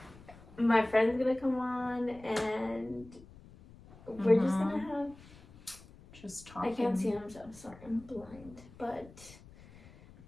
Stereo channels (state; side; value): noise; left; rumble, 21 dB below the sound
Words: My friend's gonna come on, and we're just gonna have just talking. I can't see him, so I'm sorry, I'm blind. But